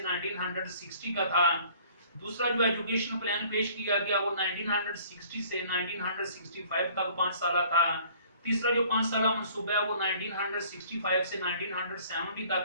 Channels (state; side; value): inverted; both; correlation -0.54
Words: का था, दूसरा जो एजुकेशन प्लान पेश किया गया वो 1960 से 1965 तक 5 साल था। तीसरा जो 5 साल मंसूबा है वो 1965 से 1970